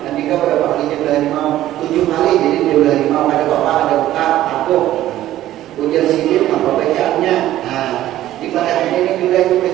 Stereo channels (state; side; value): quieter; left; 13.8 dB